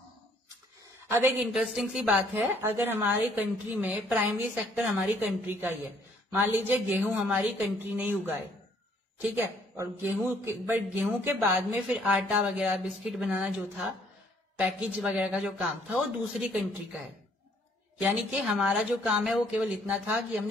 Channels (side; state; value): both; normal; correlation 0.63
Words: अब एक इंटरेस्टिंग सी बात है, अगर हमारी कंट्री में प्राइमरी सेक्टर हमारी कंट्री का ही है, मान लीजिए गेहूं हमारी कंट्री ने ही उगाए, ठीक है, और गेहूं के बाद में फिर आटा वगैरह बिस्किट बनाना जो था, पैकेज वगैरह का जो काम था वो दूसरी कंट्री का है। यानी कि हमारा जो काम है वो केवल इतना था कि